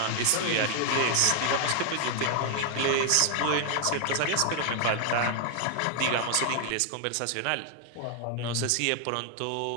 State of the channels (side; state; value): both; different; correlation 0.00